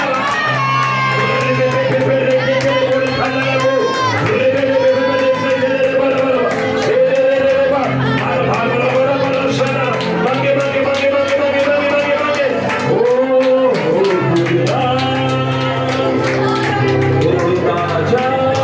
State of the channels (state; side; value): identical; both; correlation 1.00